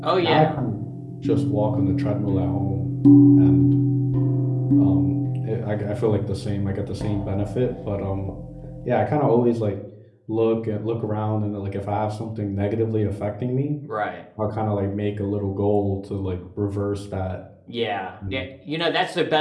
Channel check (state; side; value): identical; both; correlation 1.00